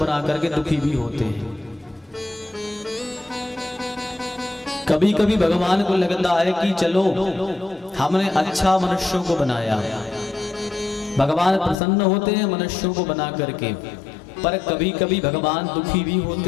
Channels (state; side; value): drops out; right; at 11.8 s